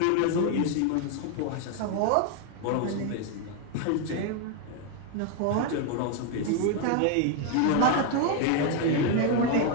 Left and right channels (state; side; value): different; both; correlation 0.01